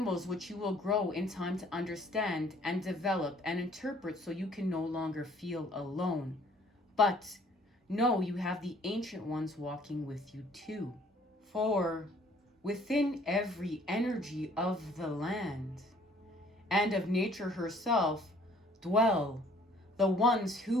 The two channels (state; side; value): normal; both; correlation 0.58